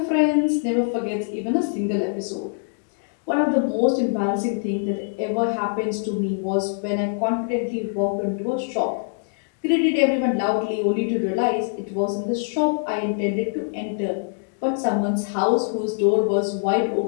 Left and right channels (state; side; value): silent; right; digital silence